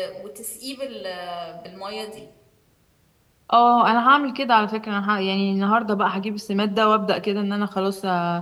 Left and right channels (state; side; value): identical; both; correlation 1.00